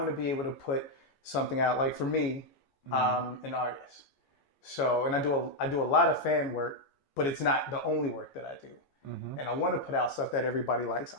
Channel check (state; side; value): late; right; 14 ms